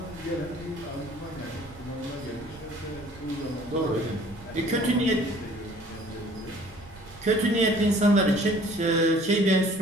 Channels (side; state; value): right; noise; rumble, 21 dB below the sound